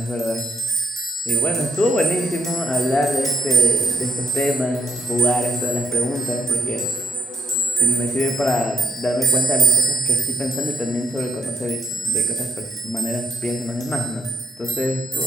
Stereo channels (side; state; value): both; normal; correlation 0.81